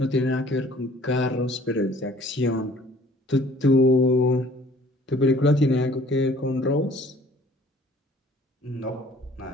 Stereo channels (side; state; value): both; normal; correlation 0.54